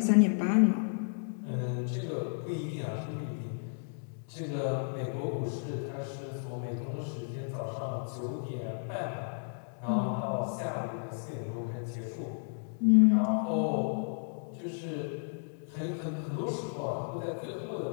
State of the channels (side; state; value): right; silent; digital silence